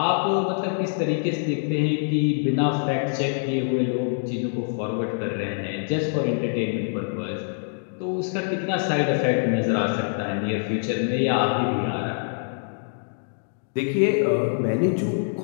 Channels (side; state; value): right; silent; digital silence